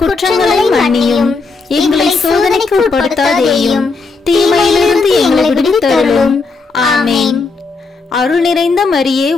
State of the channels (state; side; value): quieter; right; 4.1 dB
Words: குற்றங்களை மன்னியும். எங்களை சோதனைக்கு உட்படுத்தாதேயும், தீமையிலிருந்து எங்களை விடுவித்தருளும். ஆமேன். அருள் நிறைந்த மரியே